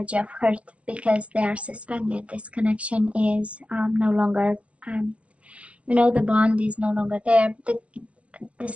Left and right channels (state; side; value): late; left; 0.063 ms